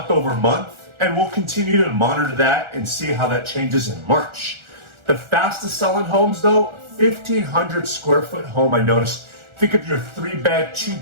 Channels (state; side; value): late; left; 1.4 ms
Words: over month, and we'll continue to monitor that and see how that changes in March. The fastest selling homes, though, 1,500 square foot home, I noticed. Think of your 3-bed,